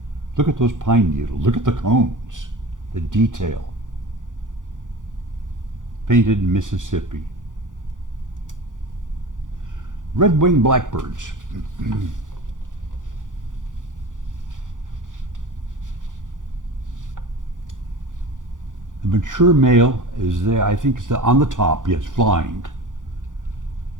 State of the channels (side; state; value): left; late; 0.88 ms